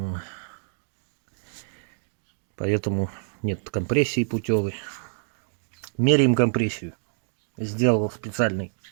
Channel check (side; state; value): left; silent; digital silence